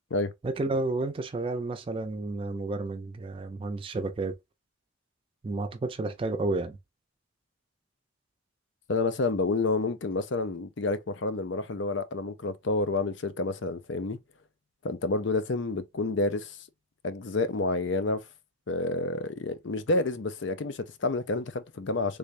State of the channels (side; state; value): both; normal; correlation 0.05